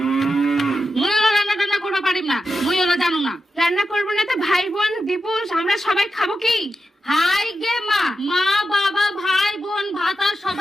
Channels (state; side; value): normal; both; correlation 0.89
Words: মুই ওগুলো রান্না টান্না করতে পারিম না, মুই ওগুলো জানো না। রান্না করবো না তো ভাই বোন দীপু আমরা সবাই খাবো কি? হাই গে মা, মা বাবা ভাই বোন ভাত আর